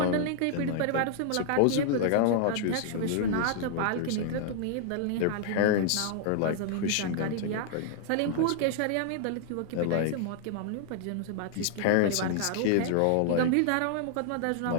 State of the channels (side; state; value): both; different; correlation -0.01